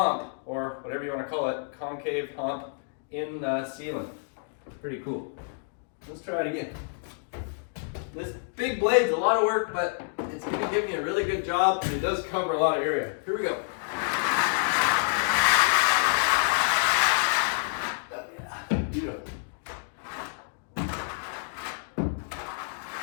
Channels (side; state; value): right; silent; digital silence